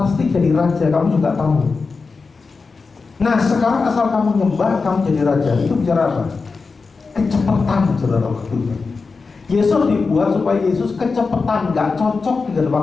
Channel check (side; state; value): right; quieter; 4.5 dB